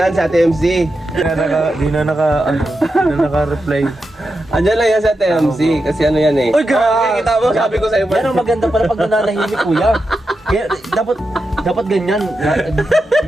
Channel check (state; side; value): normal; both; correlation 0.88